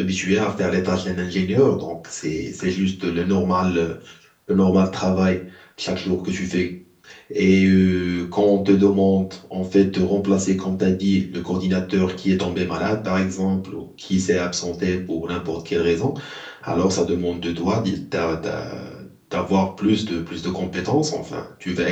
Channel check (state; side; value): identical; both; correlation 1.00